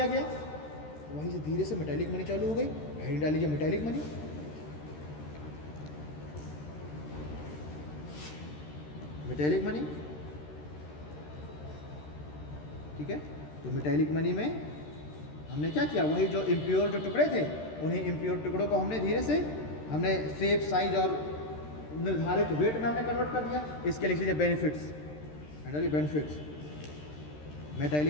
गया, वहीं से धीरे से मेटैलिक मनी चालू हो गई। हेडिंग डाल लीजिए मेटैलिक मनी। मेटैलिक मनी, ठीक है। तो मेटैलिक मनी में हमने क्या किया, वही जो इम्प्योर जो टुकड़े थे उन्हीं इम्प्योर टुकड़ों को हमने धीरे से हमने शेप साइज और निर्धारित वेट में हमने कन्वर्ट कर दिया। इसके लिख लीजिए बेनिफिट्स, बेनिफिट्स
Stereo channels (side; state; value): right; late; 13 ms